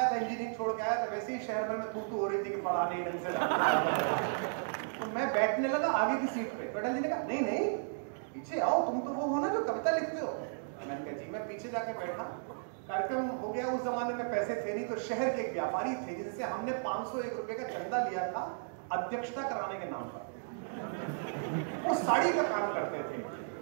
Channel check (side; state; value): left; silent; digital silence